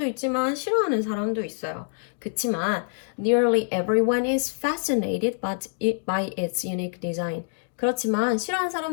있지만 싫어하는 사람도 있어요. 그치만 nearly everyone is fascinated by its unique design. 그렇지만 싫어하는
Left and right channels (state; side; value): silent; right; digital silence